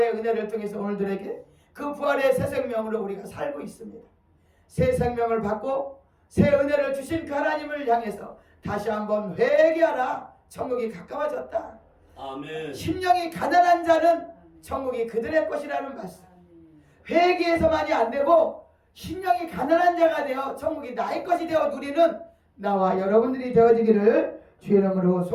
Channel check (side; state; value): both; identical; correlation 1.00